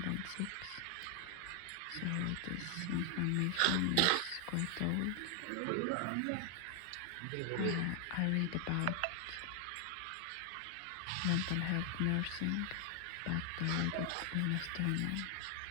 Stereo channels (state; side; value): different; both; correlation 0.00